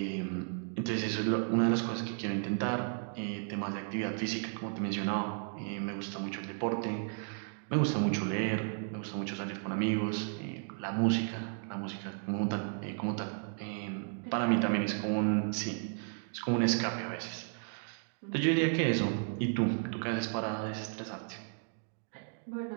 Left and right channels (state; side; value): silent; left; 55 dB below the other